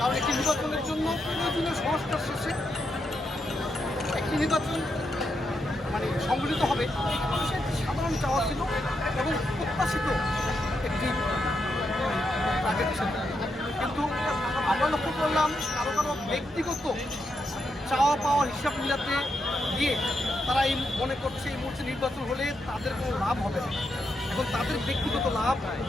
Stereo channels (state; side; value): normal; both; correlation 0.83